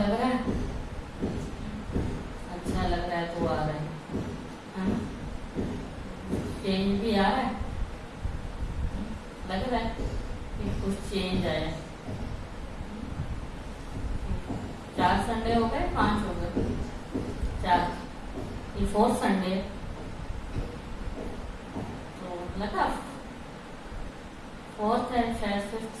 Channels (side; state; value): both; identical; correlation 1.00